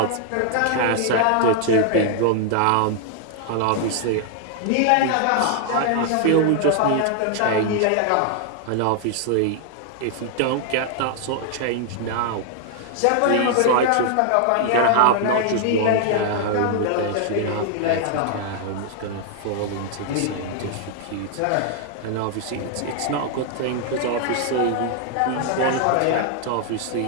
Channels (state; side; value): different; both; correlation 0.00